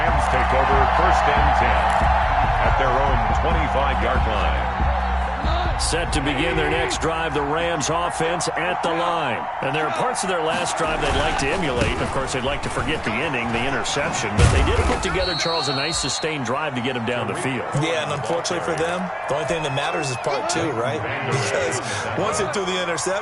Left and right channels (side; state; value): both; identical; correlation 1.00